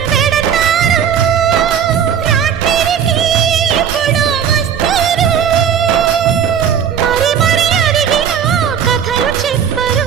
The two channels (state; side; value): quieter; left; 8.2 dB